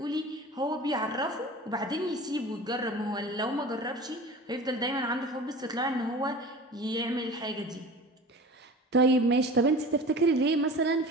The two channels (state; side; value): normal; both; correlation 0.38